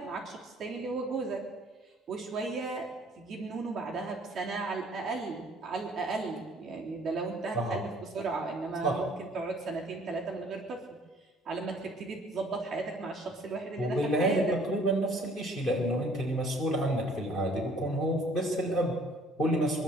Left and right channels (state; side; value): normal; both; correlation 0.57